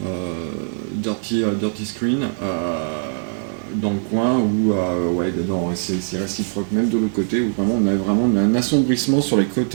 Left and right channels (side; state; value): left; silent; 65 dB below the other